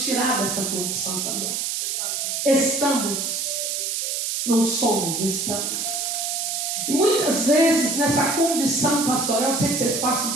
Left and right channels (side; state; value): right; noise; hiss, 1 dB below the sound